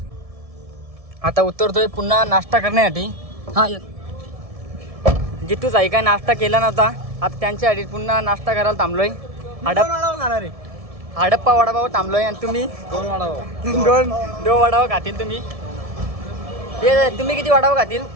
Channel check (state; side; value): late; left; 1.7 ms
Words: आता उतरतोय पुन्हा नाश्ता करण्यासाठी. हा जितूच आहे काय नाश्ता केला नव्हता. आता त्यांच्यासाठी पुन्हा नाश्ता करायला थांबलोय. हडप्पा वडापाव थांबलोय. आणि तुम्ही 2 वडापाव. 2 वडापाव खातील तुम्ही. तुम्ही किती वडापाव खातील?